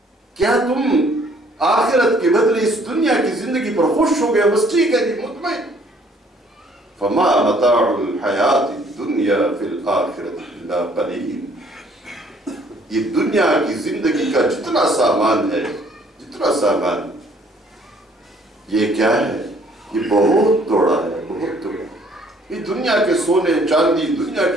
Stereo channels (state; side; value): normal; both; correlation 0.61